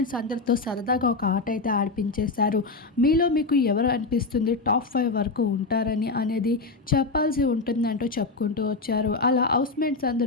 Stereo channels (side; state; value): right; quieter; 3.8 dB